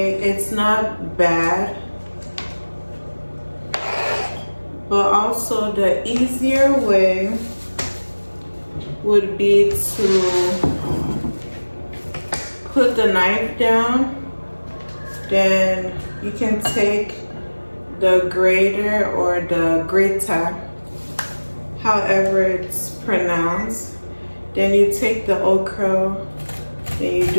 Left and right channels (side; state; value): both; inverted; correlation -1.00